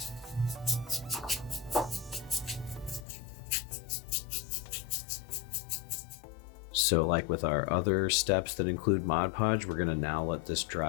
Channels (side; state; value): right; drops out; at 3.1 s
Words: So like with our other steps that include Mod Podge, we're gonna now let this